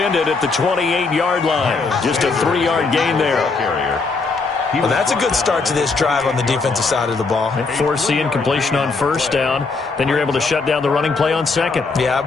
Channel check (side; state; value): right; quieter; 4.2 dB